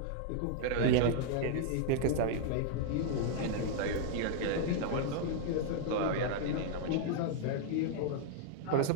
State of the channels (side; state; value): both; different; correlation -0.01